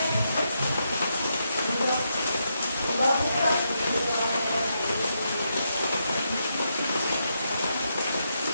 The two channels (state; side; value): inverted; both; correlation -0.82